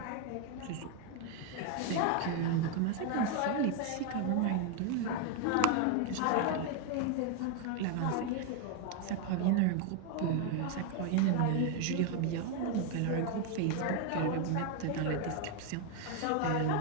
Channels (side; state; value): both; different; correlation 0.01